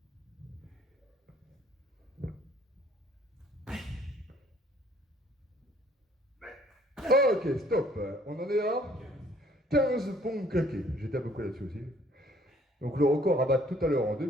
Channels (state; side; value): normal; both; correlation 0.60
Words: Ok, stop. On en est à 15 pompes claquées. J'étais à peu près là-dessus aussi. Donc le record à battre tout à l'heure en 2